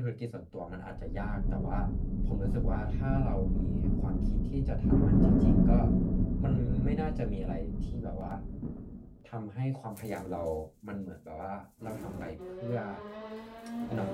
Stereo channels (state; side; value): identical; both; correlation 1.00